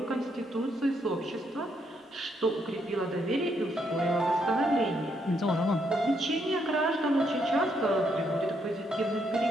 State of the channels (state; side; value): normal; both; correlation 0.75